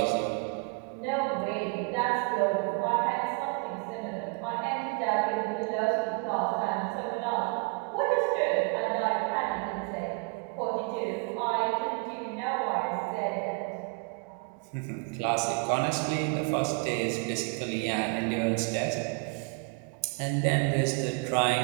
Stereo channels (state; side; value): quieter; left; 32.2 dB